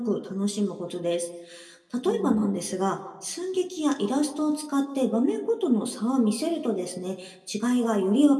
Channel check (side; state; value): both; identical; correlation 1.00